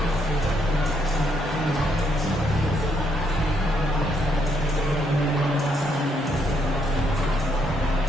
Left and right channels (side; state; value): both; normal; correlation 0.73